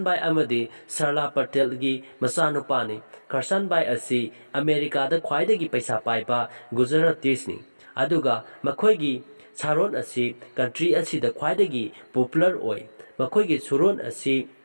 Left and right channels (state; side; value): inverted; both; correlation -1.00